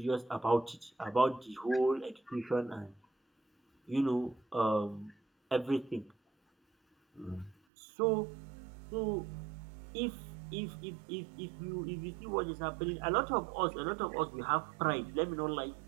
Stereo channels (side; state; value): left; drops out; at 7.6 s